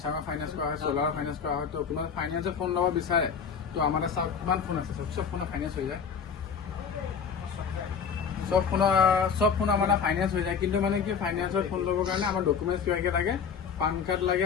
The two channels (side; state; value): right; quieter; 6.4 dB